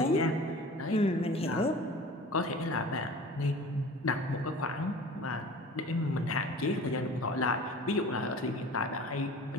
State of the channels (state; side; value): normal; both; correlation 0.41